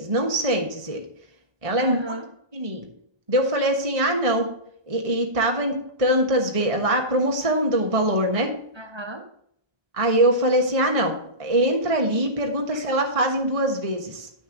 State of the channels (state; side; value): late; left; 1.6 ms